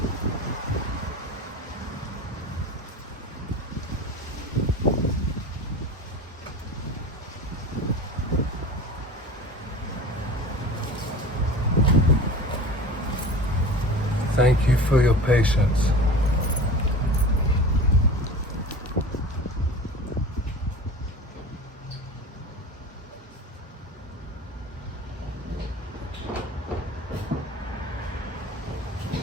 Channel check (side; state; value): both; normal; correlation 0.35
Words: Thank you for your patience.